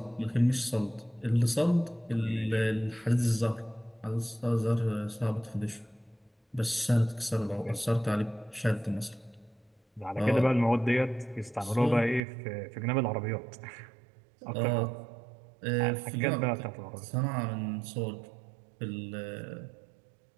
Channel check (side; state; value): left; drops out; at 12.2 s